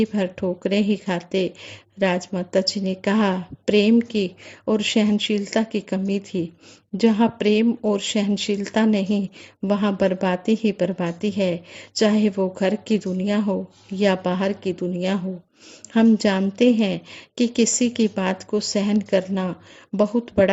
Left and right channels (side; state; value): both; identical; correlation 1.00